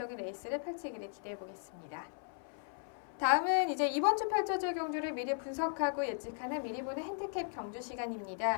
레이스를 펼치기를 기대해 보겠습니다. 다음은 이제 이번 주 펼쳐질 경주를 미리 분석하고 예측하는 미리 보는 핸디캡 경주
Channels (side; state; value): right; silent; 53 dB below the other